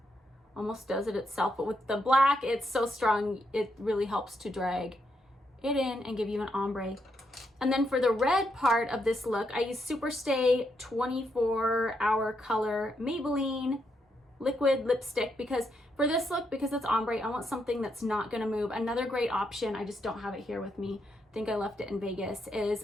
almost does it itself, but with the black, it's so strong, it really helps to drag it in and give you an ombre. And then for the red part of this look, I use Superstay 24-hour color Maybelline liquid lipstick, because for this look, because it's ombre, I want something that's not gonna move. Another great option, I just don't have it here with me, I think I left it in Vegas, is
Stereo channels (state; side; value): normal; both; correlation 0.79